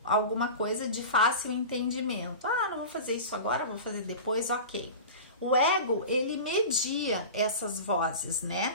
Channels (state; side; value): inverted; both; correlation -0.32